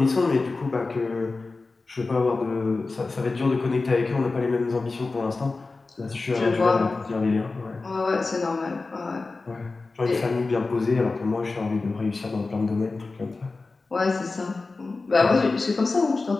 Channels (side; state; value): right; quieter; 3.7 dB